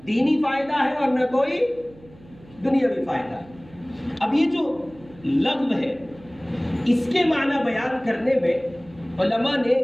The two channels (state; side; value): noise; right; hum, 24 dB below the sound